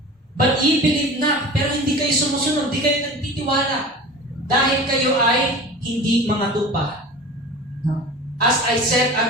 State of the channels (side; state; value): both; normal; correlation 0.36